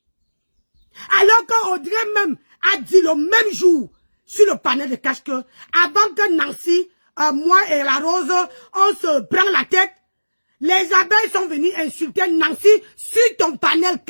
Alors qu'Audrey même a dit le même jour sur le panel de cash que avant que Nancy, moi et la Rose, on se prend la tête, les abeilles sont venues insulter Nancy sur ton panel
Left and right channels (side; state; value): both; inverted; correlation -1.00